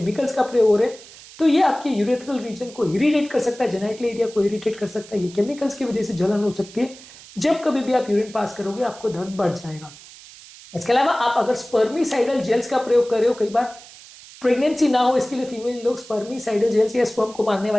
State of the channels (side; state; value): right; noise; hiss, 19 dB below the sound